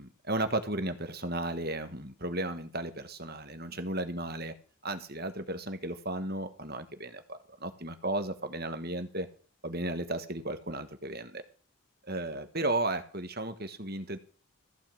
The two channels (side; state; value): both; normal; correlation 0.00